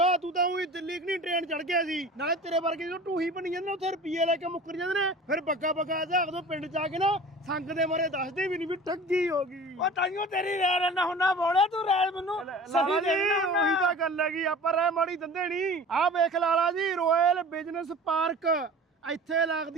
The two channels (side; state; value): both; normal; correlation 0.40